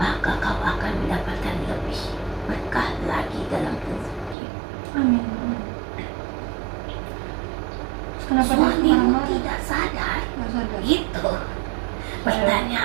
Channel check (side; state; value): left; drops out; at 4.4 s